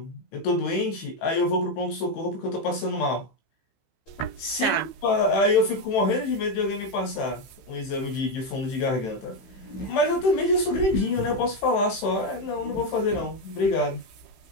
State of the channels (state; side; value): late; right; 15 ms